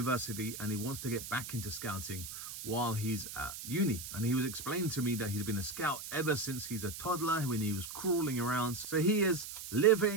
and he wants to get back into scouting while he's at uni. And he was explaining to me that he's been a scout ever since he's a toddler, when he was crawling around. So he is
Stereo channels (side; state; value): right; noise; hiss, 9 dB below the sound